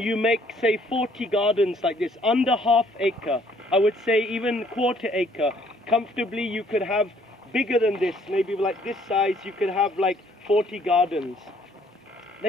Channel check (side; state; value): both; normal; correlation 0.63